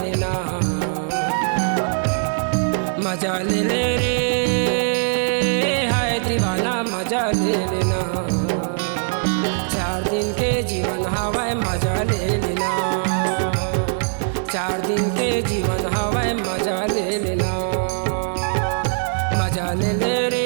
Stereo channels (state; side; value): silent; left; 60 dB below the other